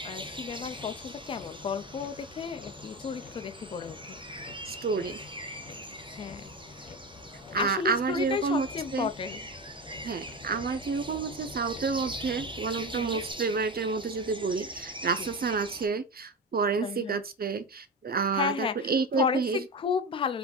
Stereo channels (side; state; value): both; normal; correlation 0.22